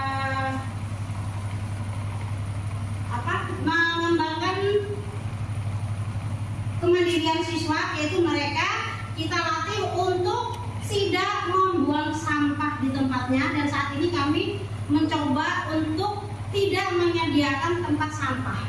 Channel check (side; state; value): both; identical; correlation 1.00